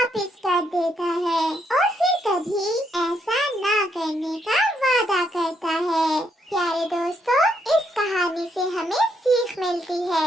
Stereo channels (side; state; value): both; normal; correlation 0.75